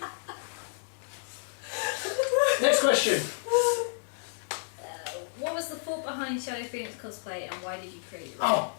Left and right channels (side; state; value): right; silent; digital silence